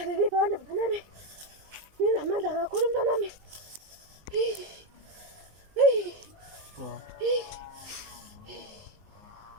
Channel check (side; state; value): left; late; 20 ms